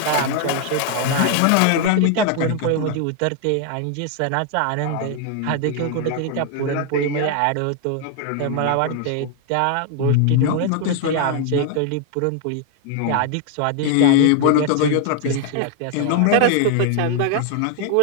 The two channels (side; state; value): both; different; correlation 0.00